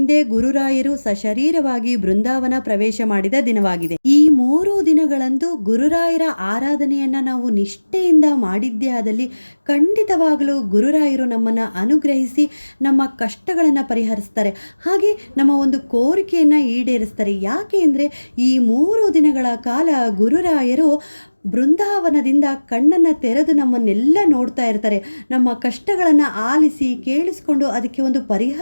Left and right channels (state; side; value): inverted; both; correlation -1.00